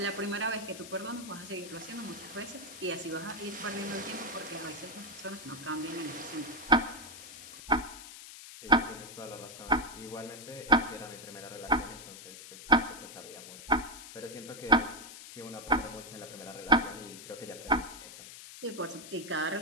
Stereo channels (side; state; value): left; noise; hiss, 13 dB below the sound